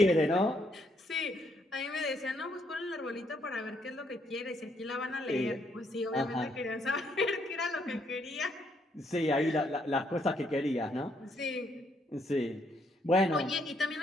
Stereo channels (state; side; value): normal; both; correlation 0.72